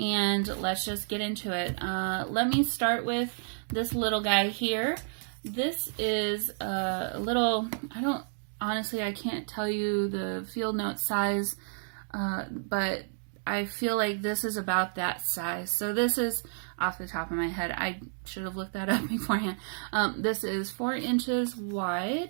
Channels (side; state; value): left; silent; digital silence